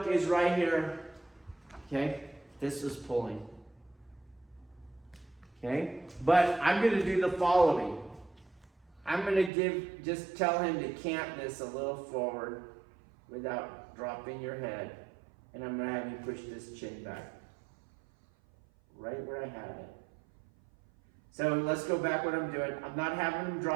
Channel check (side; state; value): left; drops out; at 9.5 s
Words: is right here. Okay? This is pulling. Okay? But I'm going to do the following. I'm going to just tell him to cant this a little forward without dropping your head. And I'm going to have you push this chin back. Right where I have it. So let's go back what I'm doing. I'm not having him